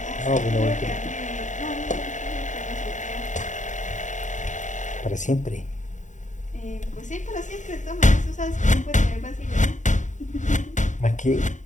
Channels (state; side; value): late; right; 0.36 ms